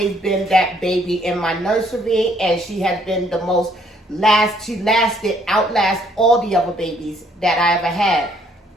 been that baby in my nursery, and she has been the most outlast all the other babies that I ever had.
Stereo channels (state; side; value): normal; both; correlation 0.65